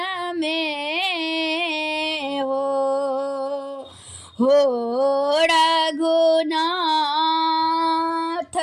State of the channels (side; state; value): both; identical; correlation 1.00